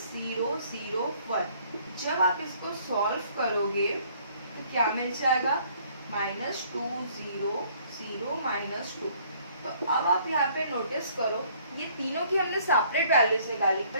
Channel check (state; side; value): inverted; both; correlation -0.61